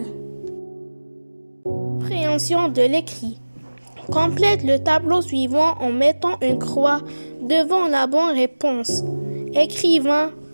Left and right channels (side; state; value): both; inverted; correlation -1.00